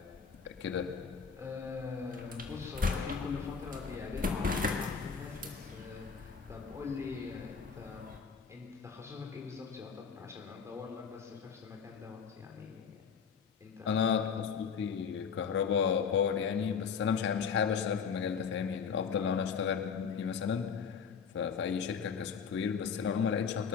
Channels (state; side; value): quieter; right; 6.3 dB